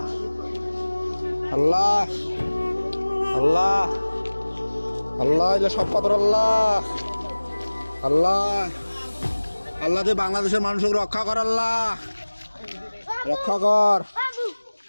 আল্লাহ আল্লাহ আল্লাহ সব পাথর। আল্লাহ আল্লাহ আল্লাহ দে বাংলাদেশের মানুষকে রক্ষা কর। আল্লাহ রক্ষা কর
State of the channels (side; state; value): both; inverted; correlation -1.00